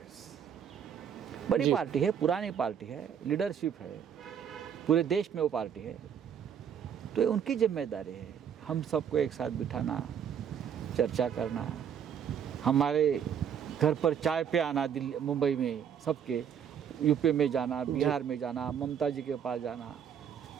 बड़ी जी। पार्टी है, पुरानी पार्टी है, लीडरशिप है, पूरे देश में वो पार्टी है, तो ये उनकी जिम्मेदारी है हम सबको एक साथ बिठाना, चर्चा करना, हमारे घर पर चाय पे आना, दिल्ली मुंबई में सबके, यूपी में जाना, बिहार में जाना, ममता जी के पास जाना,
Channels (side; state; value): left; quieter; 8.2 dB